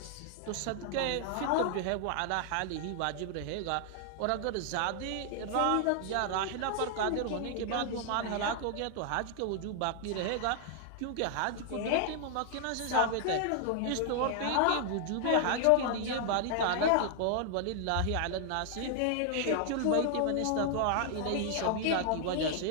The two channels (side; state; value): both; different; correlation 0.00